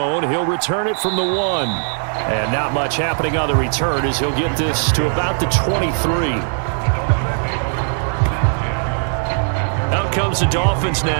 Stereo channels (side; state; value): left; silent; 63 dB below the other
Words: He'll return it from the 1. And not much happening on the return as he'll get this to about the 23. Out comes the Dolphins